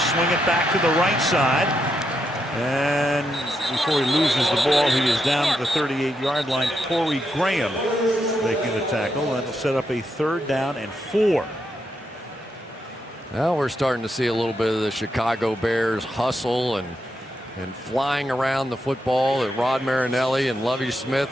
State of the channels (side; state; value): both; normal; correlation 0.82